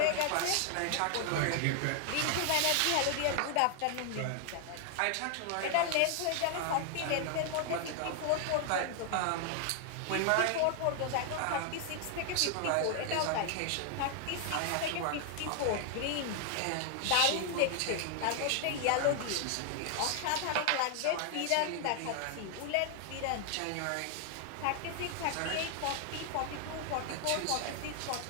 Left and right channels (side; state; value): both; different; correlation 0.00